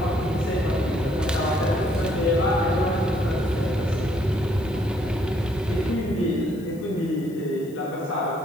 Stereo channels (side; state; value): left; noise; hiss, 25 dB below the sound